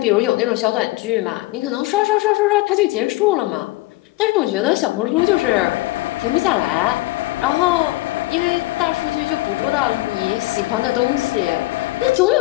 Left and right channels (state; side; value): quieter; right; 19.5 dB